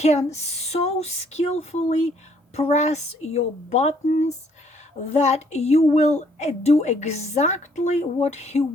so skillfully press your buttons that you will do exactly what he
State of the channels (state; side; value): normal; both; correlation 0.65